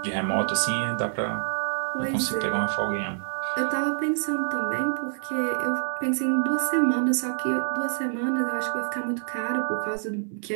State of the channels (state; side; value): silent; left; 61 dB below the other